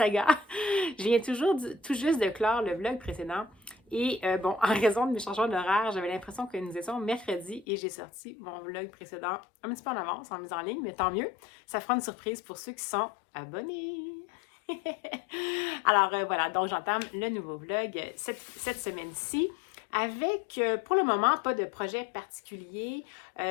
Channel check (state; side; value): drops out; right; at 7.7 s